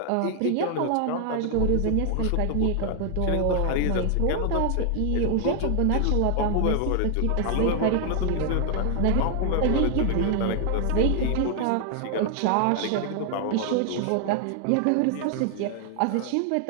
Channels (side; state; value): both; different; correlation 0.00